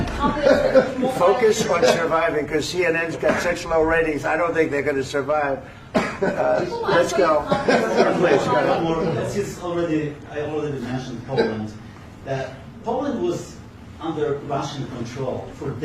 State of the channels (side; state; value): both; identical; correlation 1.00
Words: the confidence that you won't Focus on surviving, because CNN's got such low ratings, I don't think they're going to survive. Let's go. Please, go ahead. Since I already mentioned Poland, that Poland was under Russian control for